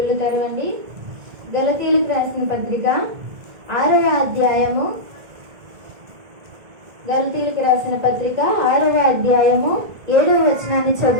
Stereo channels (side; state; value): left; late; 1.8 ms